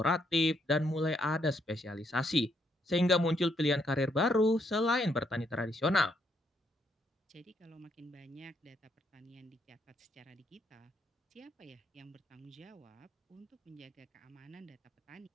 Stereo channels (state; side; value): normal; both; correlation 0.74